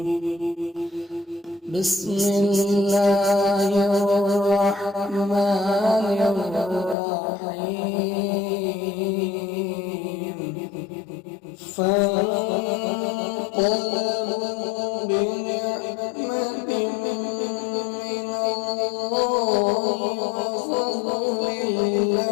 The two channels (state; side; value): drops out; right; at 7.0 s